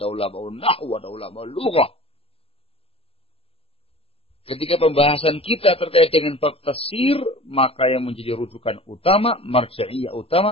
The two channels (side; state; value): right; late; 0.28 ms